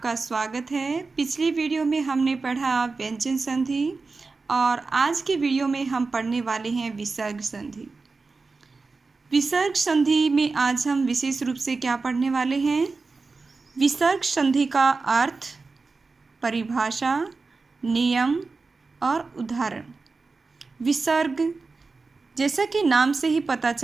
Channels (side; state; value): left; quieter; 4.1 dB